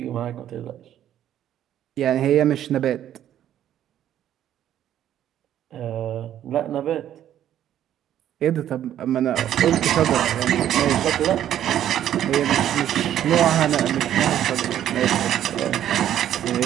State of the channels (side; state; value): left; quieter; 11.2 dB